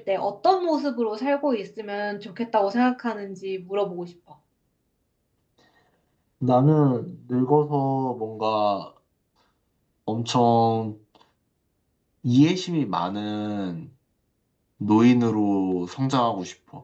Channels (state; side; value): identical; both; correlation 1.00